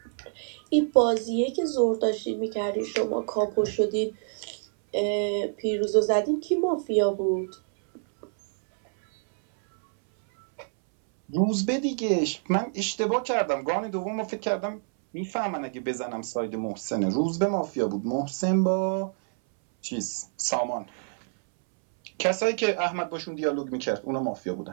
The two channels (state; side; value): silent; left; 60 dB below the other